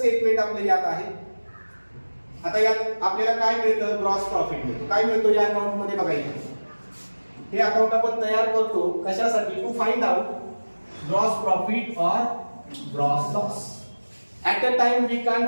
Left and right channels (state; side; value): inverted; both; correlation -1.00